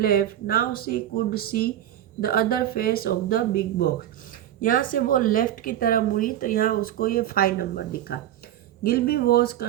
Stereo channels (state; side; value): quieter; left; 11.9 dB